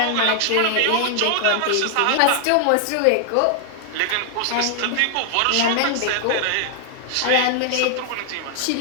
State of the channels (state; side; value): different; both; correlation 0.00